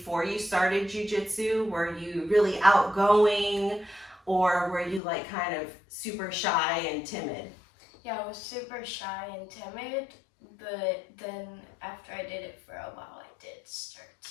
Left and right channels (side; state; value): right; drops out; at 5.0 s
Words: you started Jiu Jitsu? Were you really outgoing, or were you like kind of super shy and timid? Yeah, I was super shy and timid, but then after I did it for a while, I did start